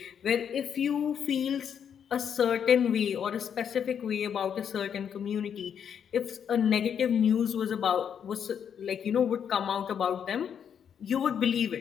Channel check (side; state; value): right; quieter; 8.1 dB